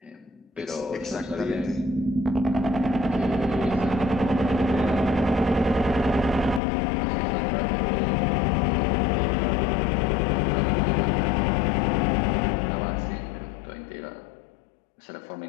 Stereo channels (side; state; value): right; drops out; at 6.6 s